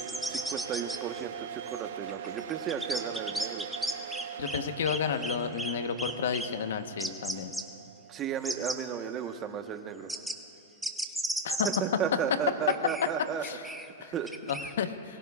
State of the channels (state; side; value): normal; both; correlation 0.02